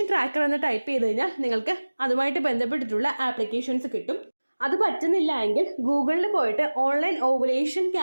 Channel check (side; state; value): both; inverted; correlation -1.00